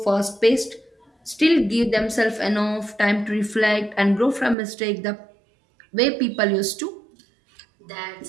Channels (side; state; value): left; drops out; at 4.5 s